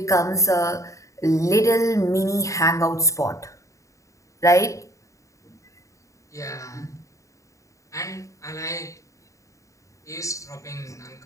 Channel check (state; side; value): late; right; 0.15 ms